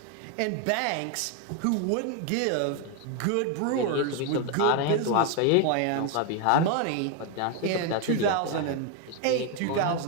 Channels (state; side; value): different; both; correlation 0.01